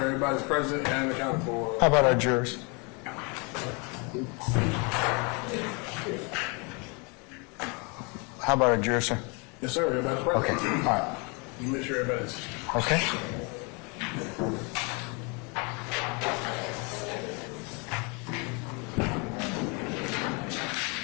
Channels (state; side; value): quieter; right; 32.1 dB